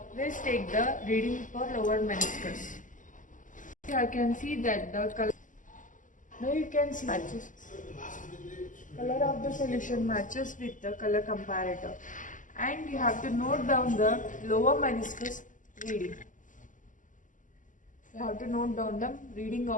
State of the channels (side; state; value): right; late; 0.37 ms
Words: take the reading for lower meniscus. Here I can see that the color. Now you can see matches. Color of the solution matches with the color comparator, and you have to note down the lower meniscus reading. You have to note down the reading